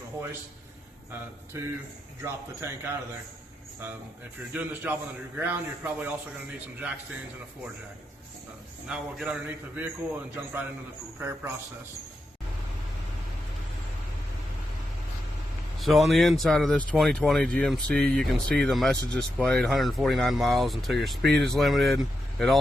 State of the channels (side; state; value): both; normal; correlation 0.86